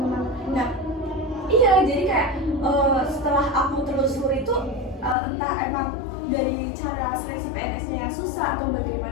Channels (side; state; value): right; drops out; at 5.2 s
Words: Nah, iya, jadi kayak setelah aku telusuri itu entah emang dari cara seleksi PNS-nya yang susah atau